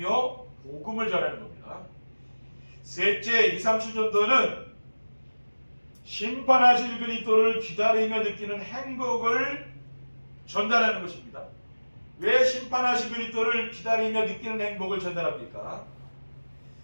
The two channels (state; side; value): inverted; both; correlation -1.00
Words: 복음을 전하는 겁니다. 셋째, 2, 3, 7전도는 심판하실 그리스도를 기다리며 느끼는 행복을 전달하는 것입니다. 왜 심판하실 그리스도를 기다리며 느끼는 행복을 전달합니까?